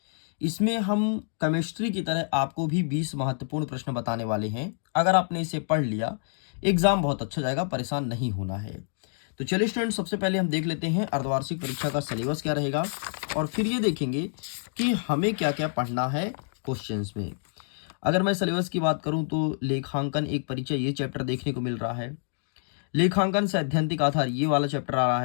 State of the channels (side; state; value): right; silent; digital silence